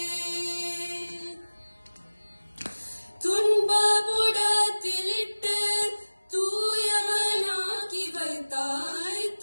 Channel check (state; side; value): inverted; both; correlation -1.00